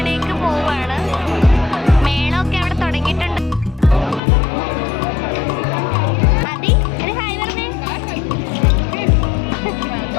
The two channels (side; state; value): right; drops out; at 4.2 s